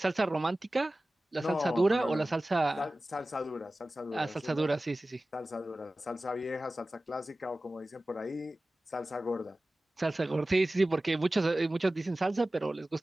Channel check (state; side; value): normal; both; correlation 0.96